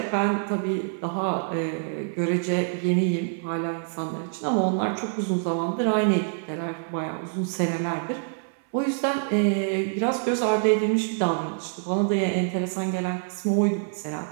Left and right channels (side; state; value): left; silent; 61 dB below the other